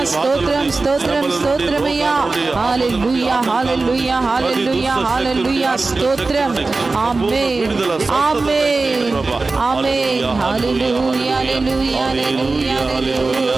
స్తోత్రం స్తోత్రం స్తోత్రమయ్యా హల్లెలూయా హల్లెలూయా హల్లెలూయా హల్లెలూయా స్తోత్రం ఆమేన్ ఆమేన్ ఆమేన్ హల్లెలూయా హల్లెలూయా హల్లెలూయా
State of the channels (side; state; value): left; quieter; 3.7 dB